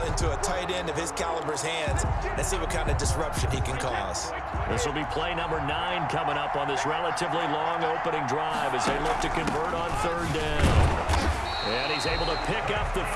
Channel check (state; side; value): identical; both; correlation 1.00